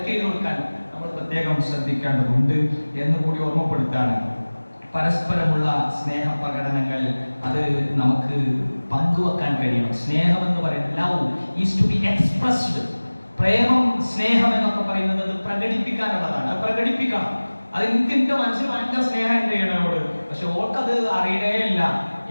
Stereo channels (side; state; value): both; inverted; correlation -1.00